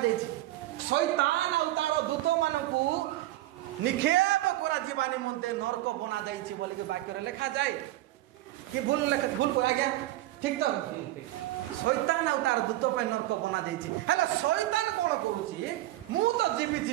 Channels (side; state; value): left; quieter; 16.1 dB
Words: जायछि शैतान और तार दूत मानकु निक्षेप करा जीवा निमंते नरक बना जायछि बोली के वाक्य रे लिखा जाय कि भूल को आज्ञा ठीक तो शैतान और तार दूत पे नरक बना जायछि हेले शैतान कोन करूछि मु तो